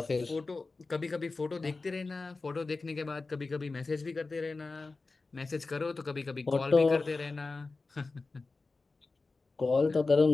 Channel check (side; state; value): right; quieter; 3.8 dB